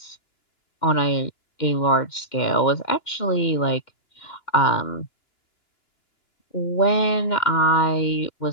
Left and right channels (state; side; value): late; right; 2.1 ms